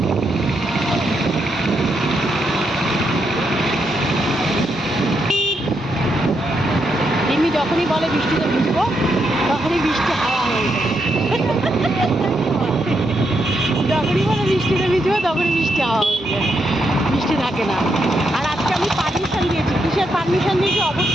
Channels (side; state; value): both; normal; correlation 0.80